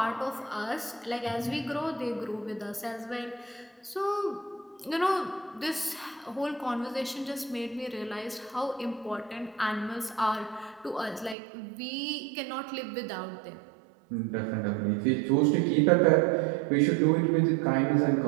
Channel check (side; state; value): left; drops out; at 11.4 s